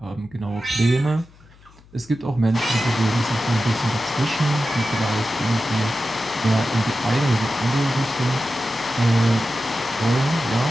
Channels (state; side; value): noise; left; hum, 26 dB below the sound